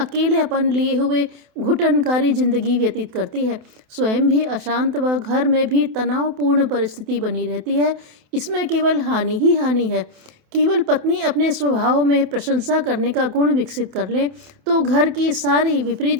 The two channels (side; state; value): left; late; 28 ms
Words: लिए हुए घुटनकारी जिंदगी व्यतीत करती है। स्वयं भी अशांत व घर में भी तनावपूर्ण परिस्थिति बनी रहती है। इसमें केवल हानि ही हानि है। केवल पत्नी अपने स्वभाव में प्रशंसा करने का गुण विकसित कर ले तो घर की सारी विपरीत